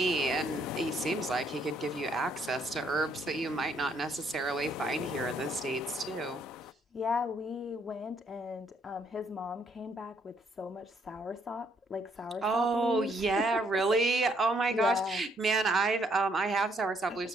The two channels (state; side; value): normal; both; correlation 0.69